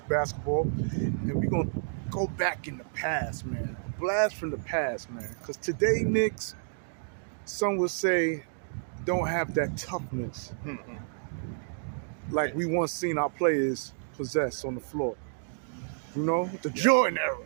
basketball. And we're going to go back in the past, man. A blast from the past, man. Because today, Knicks, some would say, don't have that toughness like we once seen our players possess on the floor. You know, the Jordan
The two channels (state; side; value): silent; left; digital silence